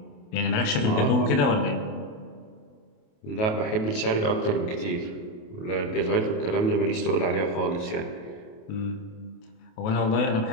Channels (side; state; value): right; late; 28 ms